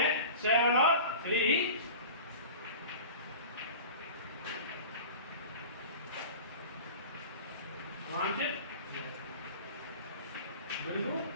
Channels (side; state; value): both; inverted; correlation -0.37